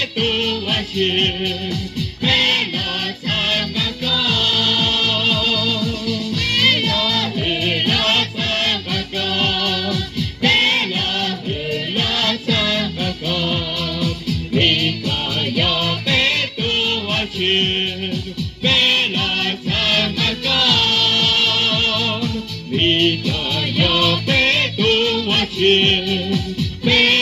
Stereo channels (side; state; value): both; identical; correlation 1.00